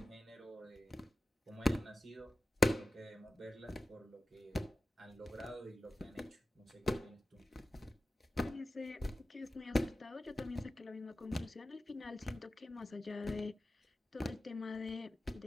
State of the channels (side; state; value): both; normal; correlation 0.94